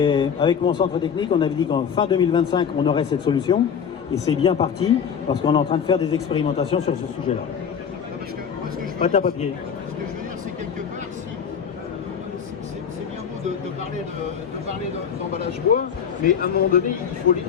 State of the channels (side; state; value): right; quieter; 7.4 dB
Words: avec mon centre technique, on avait dit qu'en fin 2025, on aurait cette solution. Et c'est bien parti, parce qu'on est en train de faire des expérimentations sur ce sujet-là. Pâte à papier. Ce que je veux dire, c'est quelque part, c'est bien beau de parler d'emballage bois, mais à un moment donné,